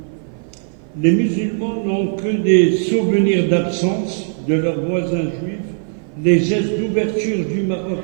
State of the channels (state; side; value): silent; left; 57 dB below the other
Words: Les musulmans n'ont que des souvenirs d'absence de leurs voisins juifs. Les gestes d'ouverture du Maroc